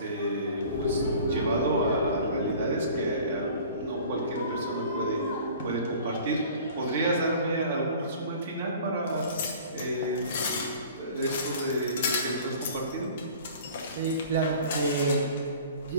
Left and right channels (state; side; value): inverted; both; correlation -0.46